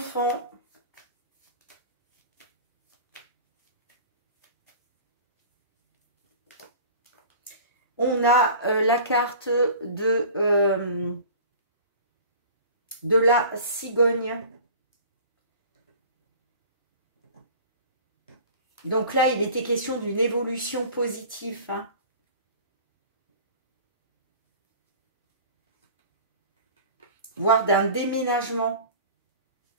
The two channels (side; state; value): both; inverted; correlation -0.41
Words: On a la carte de la cigogne. Donc là, il était question d'une évolution positive. Hein. Voire d'un déménagement.